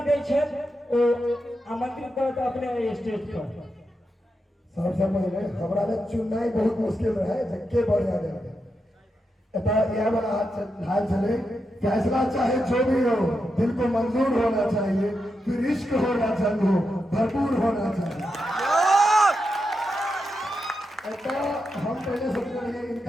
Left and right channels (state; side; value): normal; both; correlation 0.86